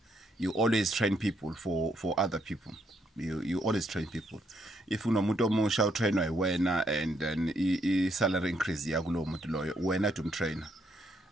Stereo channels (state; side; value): normal; both; correlation 0.74